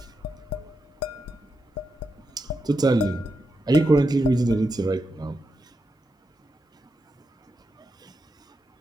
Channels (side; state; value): both; normal; correlation 0.86